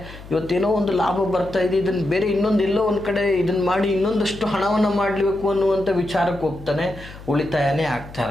ಇವತ್ತೇನೋ ಒಂದು ಲಾಭ ಬರ್ತಾ ಇದೆ, ಇದನ್ನು ಬೇರೆ ಎಲ್ಲೋ ಒಂದು ಕಡೆ ಇದನ್ನು ಮಾಡಿ ಇನ್ನೊಂದಷ್ಟು ಹಣವನ್ನು ಮಾಡಬೇಕು ಅನ್ನುವಂಥ ವಿಚಾರಕ್ಕೆ ಹೋಗ್ತಾನೆ, ಉಳಿತಾಯನೇ ಆಗ್ತಾ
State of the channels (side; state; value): left; noise; hum, 16 dB below the sound